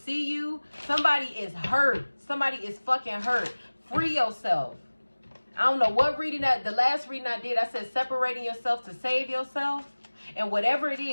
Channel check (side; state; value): both; inverted; correlation -1.00